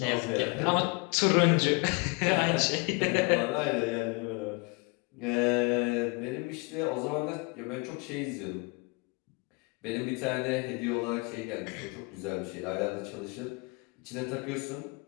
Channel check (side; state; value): right; quieter; 29.4 dB